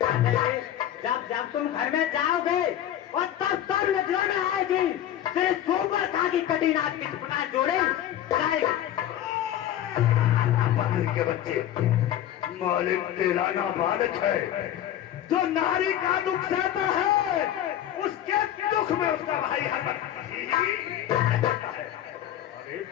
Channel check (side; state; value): right; quieter; 11.6 dB